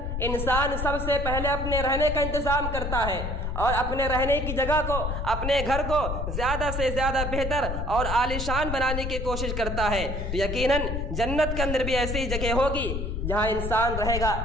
انسان سب سے پہلے اپنے رہنے کا انتظام کرتا ہے، اور اپنے رہنے کی جگہ کو، اپنے گھر کو زیادہ سے زیادہ بہتر اور عالیشان بنانے کی کوشش کرتا ہے۔ تو یقیناً جنت کے اندر بھی ایسی جگہ ہوگی جہاں انسان رہے گا۔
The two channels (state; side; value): noise; left; rumble, 2 dB below the sound